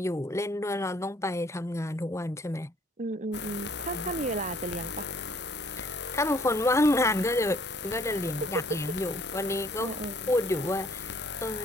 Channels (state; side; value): normal; both; correlation 0.60